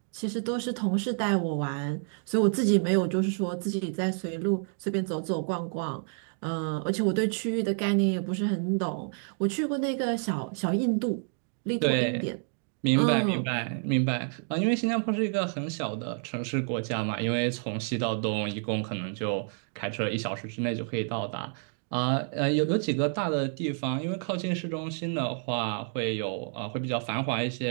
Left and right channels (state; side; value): silent; left; 56 dB below the other